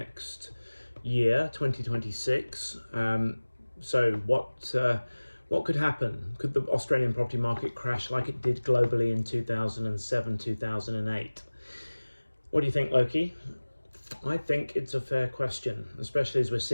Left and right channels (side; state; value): both; inverted; correlation -1.00